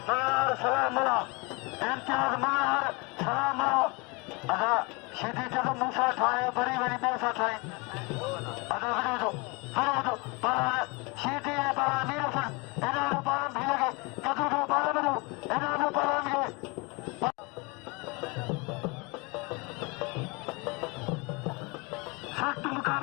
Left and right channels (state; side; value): quieter; right; 28.2 dB